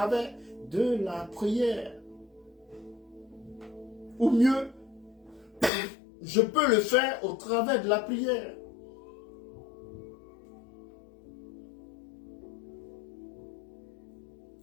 de la prière. Ou mieux, je peux le faire au travers de la prière.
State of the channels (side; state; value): right; drops out; at 5.7 s